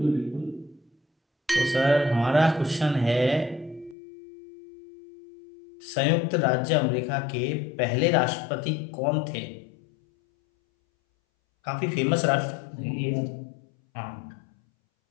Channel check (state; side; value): drops out; right; at 4.0 s